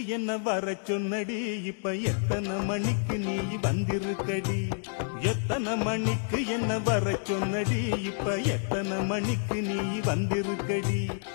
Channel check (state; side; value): silent; right; 59 dB below the other